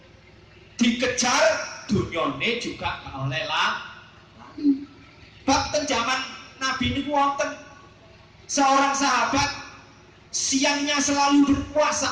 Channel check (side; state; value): both; identical; correlation 1.00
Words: dikejar, dunyane juga gak oleh lali. Bab ten zaman Nabi niku wonten seorang sahabat siangnya selalu berpuasa,